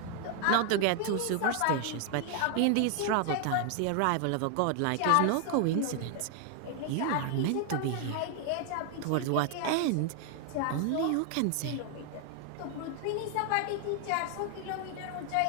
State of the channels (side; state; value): both; different; correlation 0.00